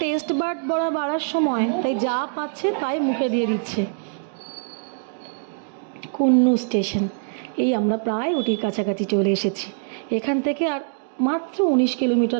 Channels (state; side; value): silent; left; digital silence